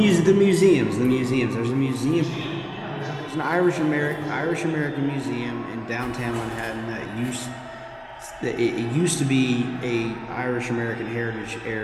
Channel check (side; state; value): both; identical; correlation 1.00